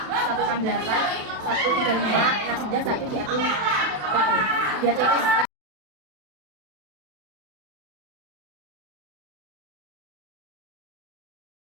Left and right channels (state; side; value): late; left; 36 ms